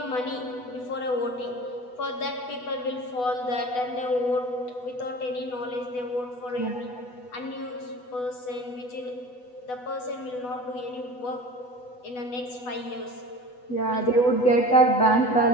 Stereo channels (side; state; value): right; late; 8.1 ms